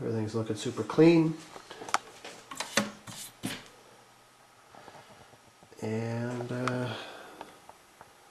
Everything's looking super clean. And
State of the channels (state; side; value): identical; both; correlation 1.00